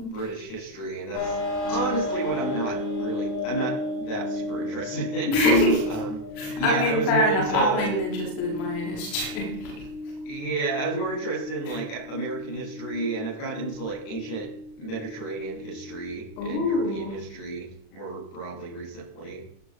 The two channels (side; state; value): right; late; 36 ms